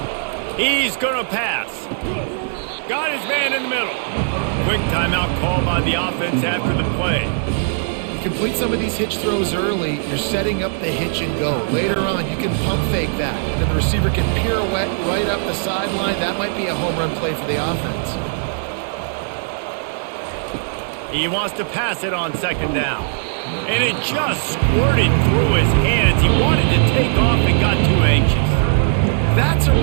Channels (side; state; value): left; silent; digital silence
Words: He's going to pass. Got his man in the middle. Quick timeout call by the offense after the play. You complete some of these hitch throws early, you're setting up the hitch and go. Later on, you can pump fake that, and then the receiver can pirouette right up the sideline. That might be a home run play for the offense. He wants to pass it on second down. And it just squirted through his hands. He wanted to take off and got too anxious. That's a